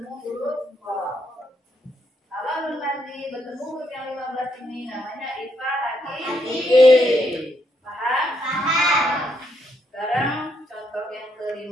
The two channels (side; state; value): both; normal; correlation 0.76